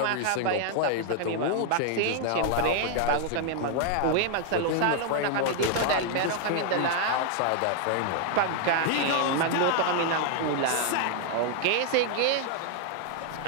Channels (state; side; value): different; both; correlation 0.00